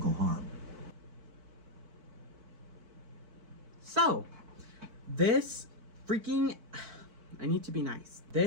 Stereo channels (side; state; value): left; late; 4.5 ms